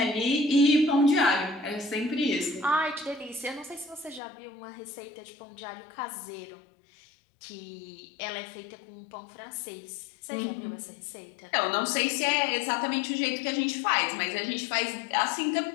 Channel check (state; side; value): drops out; right; at 4.2 s